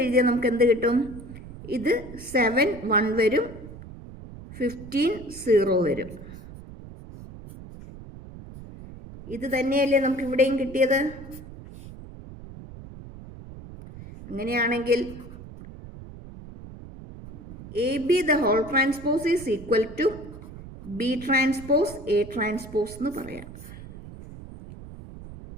എഴുതിയാൽ നമുക്ക് എന്ത് കിട്ടും? ഇത് 7 1 വരും, 15 0 വരും. ഇത് തന്നെയല്ലേ നമുക്ക് ഇവിടെയും കിട്ടിയത്? അങ്ങനെയാണെങ്കിൽ A B the whole transpose is equal to B transpose A transpose എന്ന് പറയാം.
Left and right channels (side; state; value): right; noise; rumble, 15 dB below the sound